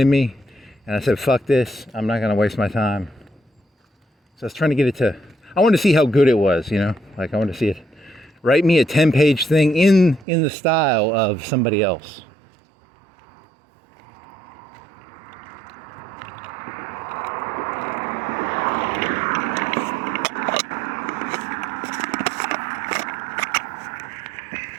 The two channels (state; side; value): drops out; left; at 10.2 s